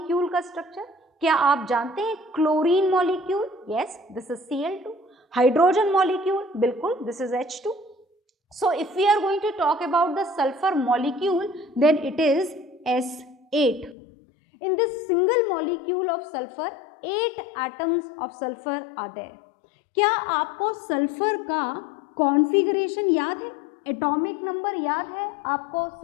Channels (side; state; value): right; drops out; at 14.0 s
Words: का स्ट्रक्चर? क्या आप जानते हैं chlorine molecule? Yes, this is Cl2। Hydrogen molecule? बिल्कुल, this is H2। So if we are going to talk about the sulfur molecule, then it is S8. In this single molecule of sulfur, 8 atoms of sulfur are there. क्या आपको सल्फर का कॉन्फ़िगरेशन याद है? एटॉमिक नंबर याद है आपको